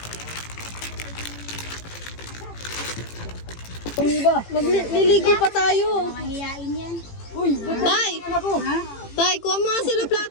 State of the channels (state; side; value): late; right; 18 ms